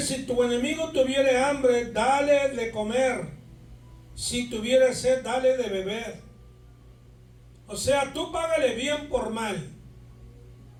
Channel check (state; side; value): identical; both; correlation 1.00